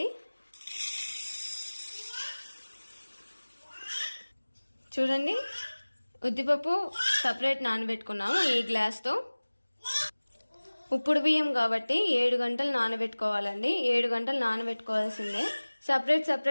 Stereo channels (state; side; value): inverted; both; correlation -1.00